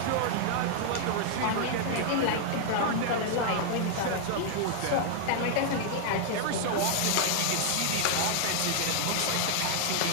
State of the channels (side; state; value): both; different; correlation 0.00